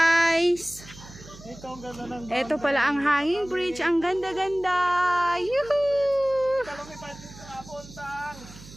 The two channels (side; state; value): right; noise; hum, 18 dB below the sound